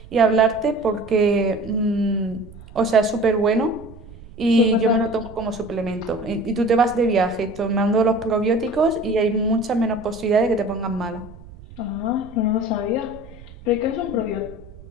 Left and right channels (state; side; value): noise; right; rumble, 19 dB below the sound